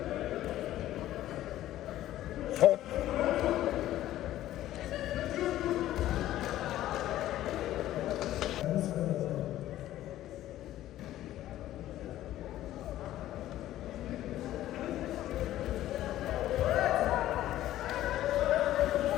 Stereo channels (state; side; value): quieter; right; 13.8 dB